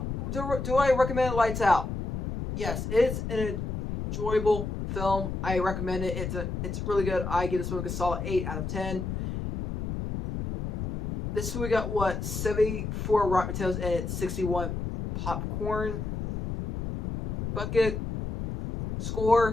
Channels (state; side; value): noise; left; rumble, 4 dB below the sound